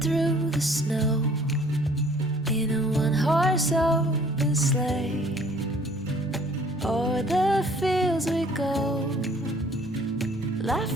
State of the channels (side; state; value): both; normal; correlation 0.56